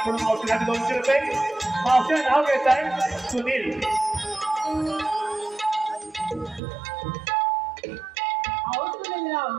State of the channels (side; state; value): left; drops out; at 6.6 s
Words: मावशीसाठी 200 रुपये. मावशीचं नाव घ्यायचं आहे सुनील.